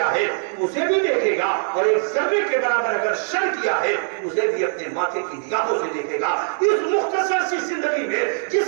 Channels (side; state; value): left; silent; digital silence